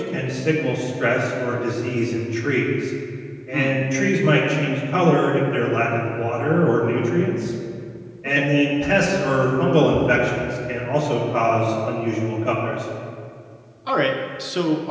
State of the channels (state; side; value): identical; both; correlation 1.00